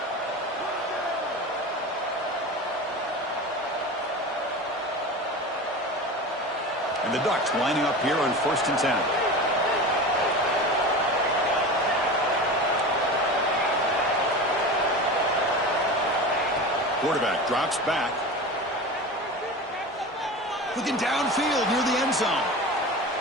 And the Ducks lining up here on 1st and 10. Quarterback drops back. Looking downfield near the end zone.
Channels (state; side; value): normal; both; correlation 0.30